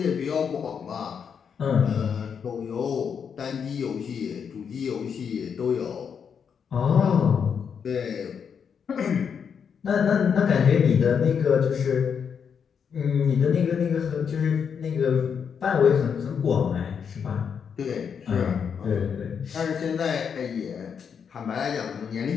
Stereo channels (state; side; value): quieter; right; 7.0 dB